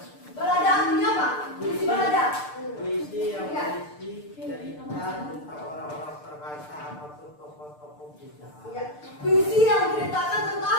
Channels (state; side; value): late; right; 6.7 ms